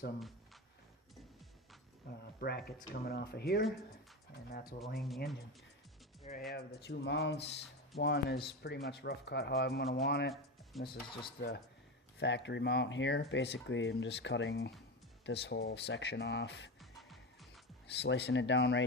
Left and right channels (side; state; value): both; normal; correlation 0.20